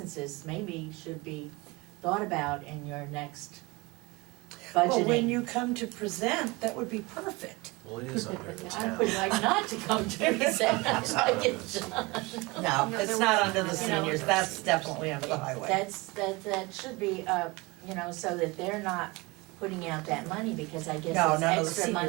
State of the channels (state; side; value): quieter; left; 24.2 dB